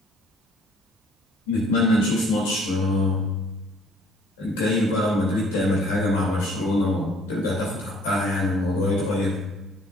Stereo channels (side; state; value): both; normal; correlation 0.58